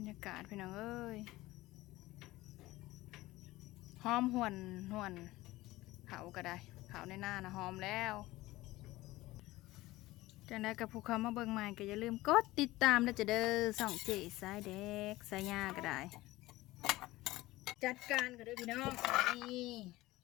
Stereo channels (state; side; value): quieter; right; 18.3 dB